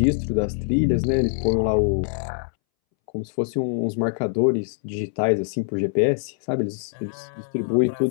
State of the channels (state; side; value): silent; right; 63 dB below the other